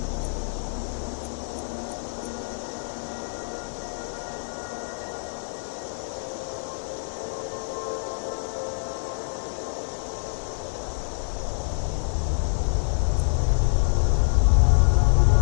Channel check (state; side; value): silent; right; digital silence